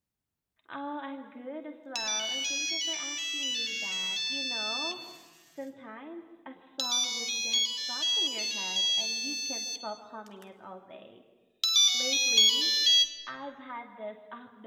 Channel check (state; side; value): identical; both; correlation 1.00